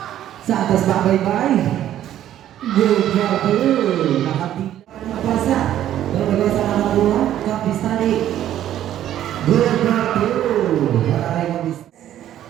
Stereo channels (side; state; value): left; quieter; 11.8 dB